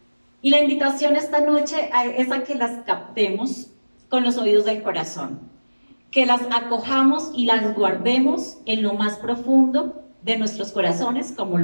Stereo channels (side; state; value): both; inverted; correlation -1.00